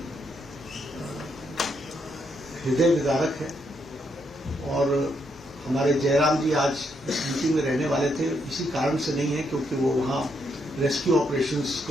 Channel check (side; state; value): both; normal; correlation 0.77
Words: हृदय विदारक है। और हमारे जयराम जी आज इस मीटिंग में रहने वाले थे, इसी कारण से नहीं है क्योंकि वो वहाँ रेस्क्यू ऑपरेशंस